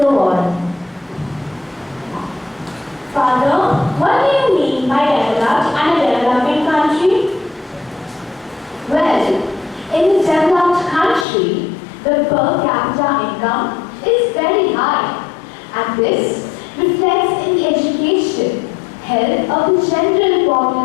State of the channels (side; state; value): right; drops out; at 11.2 s